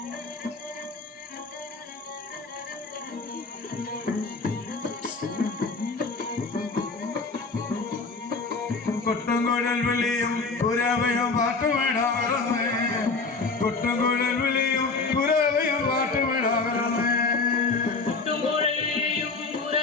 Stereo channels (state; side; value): quieter; right; 4.1 dB